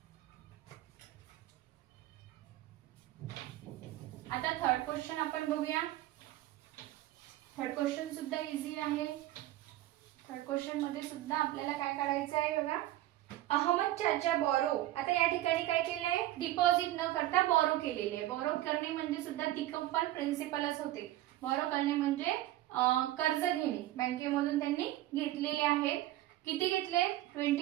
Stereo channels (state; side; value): quieter; left; 15.1 dB